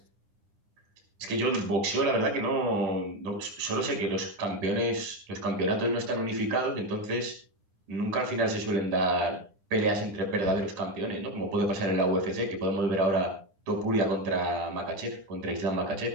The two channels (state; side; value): late; left; 9.9 ms